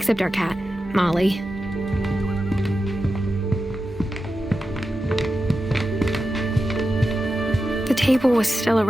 our cat, Molly. The table was still a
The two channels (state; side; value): normal; both; correlation 0.91